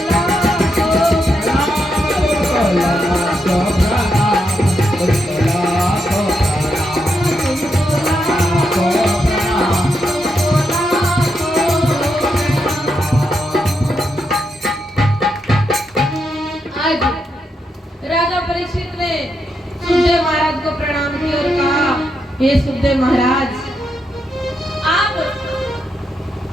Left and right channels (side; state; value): both; normal; correlation 0.82